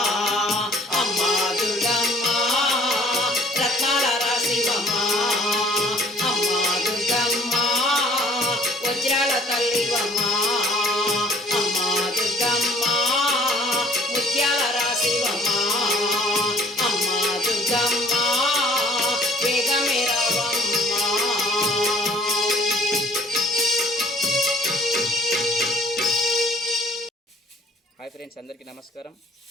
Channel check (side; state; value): both; normal; correlation 0.57